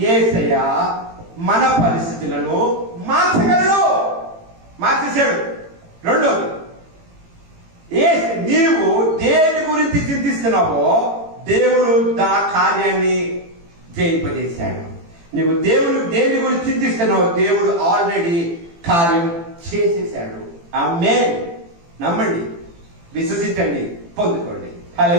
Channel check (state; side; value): late; left; 18 ms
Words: యేసయ్య మన పరిస్థితులను మార్చగలడు, మార్చేశాడు. రెండోది, నీవు దేని గురించి చింతిస్తున్నావో దేవుడు ఆ కార్యాన్ని జయింపజేశాడు. నువ్వు దేని గురించి చింతిస్తున్నావో దేవుడు ఆల్రెడీ కార్యం చేసేసాడు. ఆమేన్. నమ్మండి, విశ్వసించండి, పొందుకోండి.